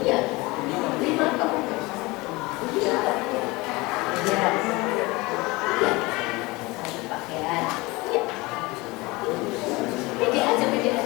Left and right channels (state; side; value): quieter; right; 23.1 dB